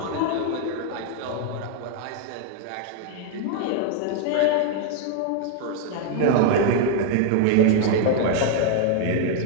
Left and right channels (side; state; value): both; different; correlation 0.00